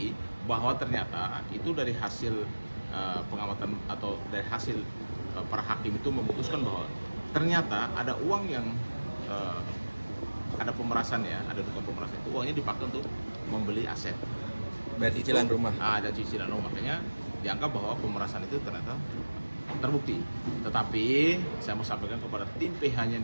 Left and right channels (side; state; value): both; inverted; correlation -1.00